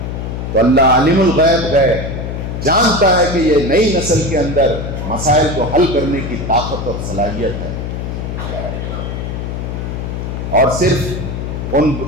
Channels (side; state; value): left; noise; hum, 5 dB below the sound